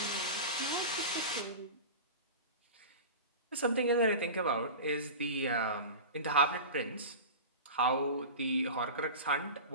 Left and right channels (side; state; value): both; inverted; correlation -0.31